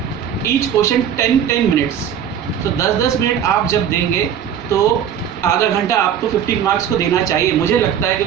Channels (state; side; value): quieter; left; 8.9 dB